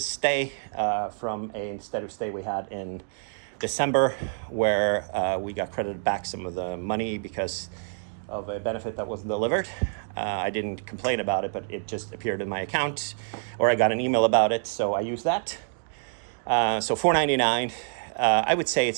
stay from a steady stay we had in December, where we got credited back some of the money because of a benefit that wasn't delivered. I didn't complain about it, but it just appeared in my account, or I got an email about it, so I used that. So $499. I would say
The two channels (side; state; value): left; silent; digital silence